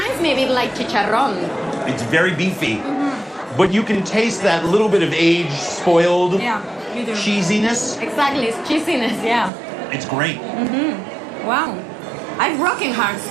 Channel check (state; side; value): drops out; left; at 9.5 s